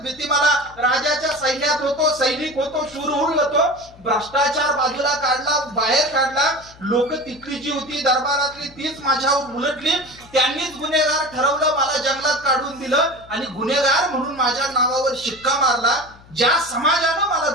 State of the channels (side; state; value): left; noise; hum, 24 dB below the sound